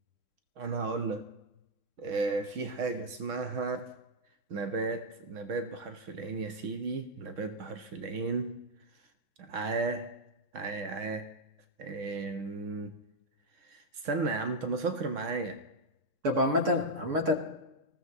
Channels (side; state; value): left; late; 3.6 ms